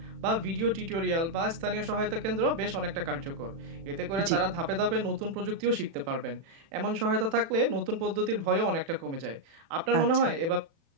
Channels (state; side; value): late; left; 36 ms